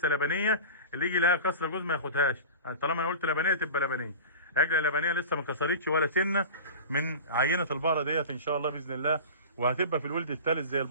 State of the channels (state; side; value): inverted; both; correlation -0.33